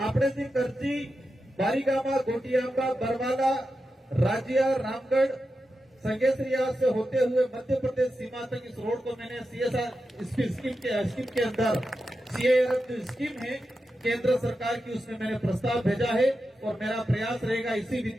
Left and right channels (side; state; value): both; normal; correlation 0.90